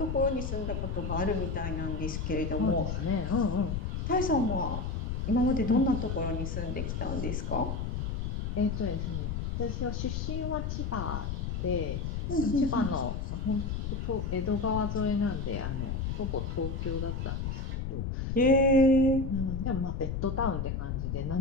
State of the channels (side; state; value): left; noise; rumble, 2 dB below the sound